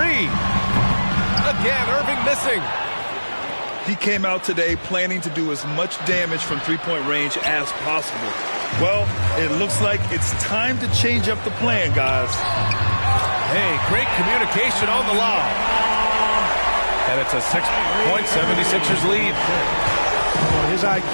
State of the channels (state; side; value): inverted; both; correlation -1.00